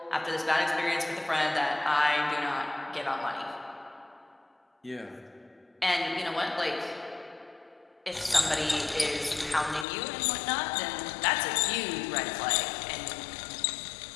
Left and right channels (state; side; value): drops out; right; at 9.9 s